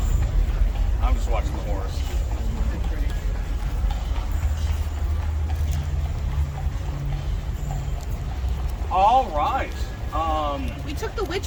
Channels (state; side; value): identical; both; correlation 1.00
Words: I'm just watching the horse. All right. We took the